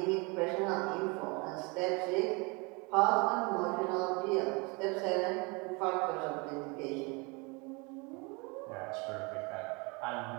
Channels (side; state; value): left; quieter; 29.1 dB